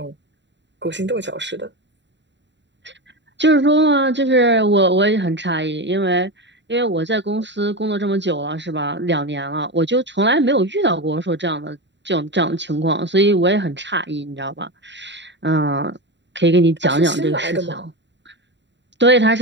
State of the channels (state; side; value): late; left; 0.52 ms